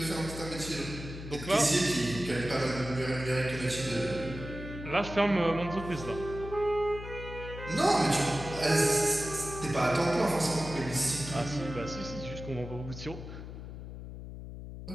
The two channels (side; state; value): left; noise; hum, 10 dB below the sound